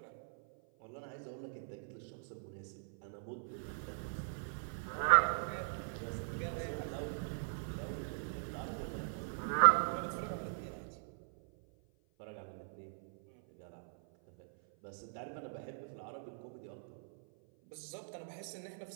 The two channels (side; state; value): left; silent; 51 dB below the other